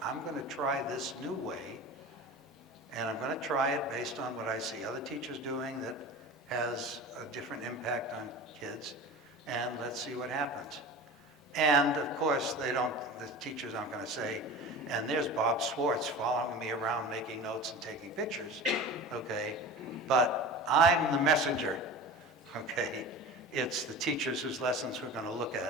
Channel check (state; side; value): normal; both; correlation 0.34